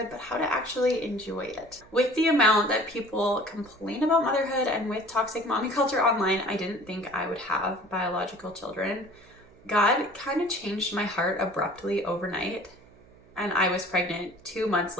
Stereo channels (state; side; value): noise; right; hum, 26 dB below the sound